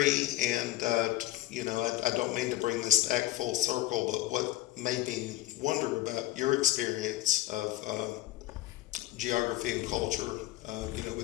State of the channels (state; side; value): quieter; right; 16.2 dB